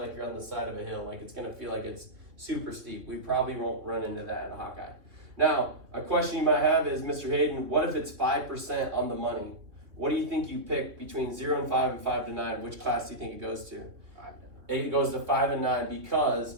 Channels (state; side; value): late; left; 3.0 ms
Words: you're on the side of a hill, like it's gonna feel like it's super steep. We probably won't run into that in a Hawkeye. Now, a question you might have is, Mr. Hayden, what if it's 5% on the money? What do you think you pick between 0 and 5 and 5 to 9? Which class do you think it goes to? 5 to 9. It goes to 5 and 9